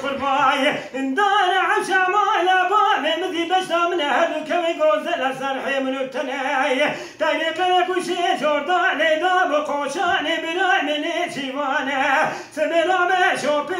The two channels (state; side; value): identical; both; correlation 1.00